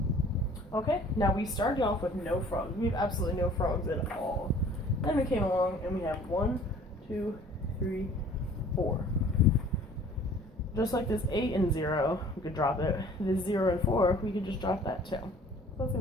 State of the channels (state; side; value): normal; both; correlation 0.51